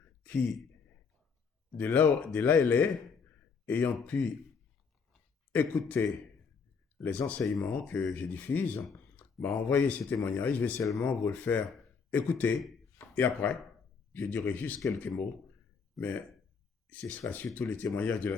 qui, de là elle est, ayant pu écouter les enseignements que je diffuse, m'a envoyé ces témoignages. Je vais seulement vous le faire écouter. Et après, je dirai juste quelques mots, mais ce sera surtout les témoignages de la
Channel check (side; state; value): right; quieter; 5.5 dB